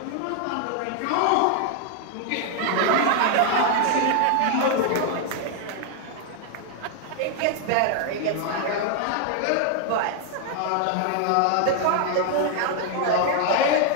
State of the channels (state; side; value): different; both; correlation 0.00